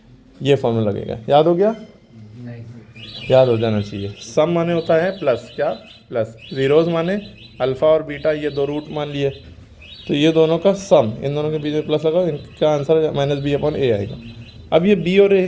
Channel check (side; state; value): both; identical; correlation 1.00